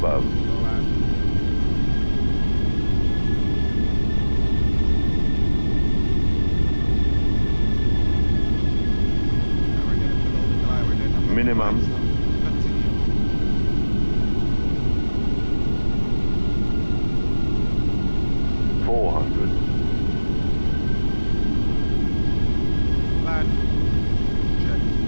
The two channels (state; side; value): inverted; both; correlation -1.00